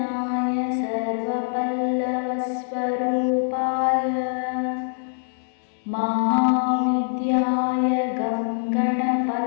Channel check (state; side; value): silent; right; digital silence